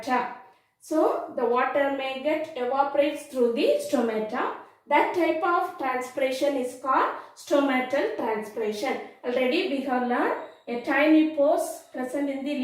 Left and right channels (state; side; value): identical; both; correlation 1.00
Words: So the water may get evaporates through the stomata. That type of transpiration is called stomatal transpiration. Already we have learned a tiny pores present in the